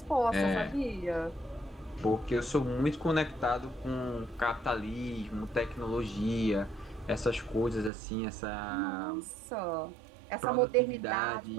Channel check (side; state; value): left; drops out; at 7.9 s